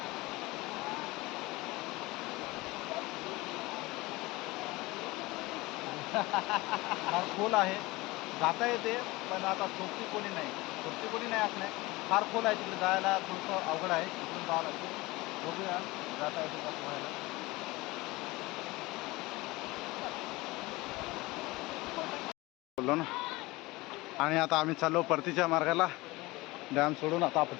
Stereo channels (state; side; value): quieter; right; 21.4 dB